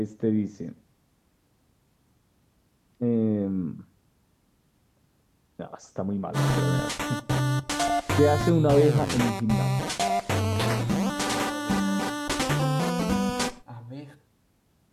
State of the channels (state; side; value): identical; both; correlation 1.00